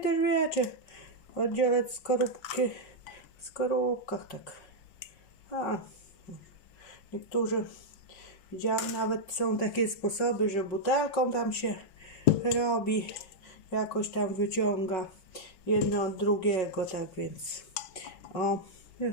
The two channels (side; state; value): right; late; 5.4 ms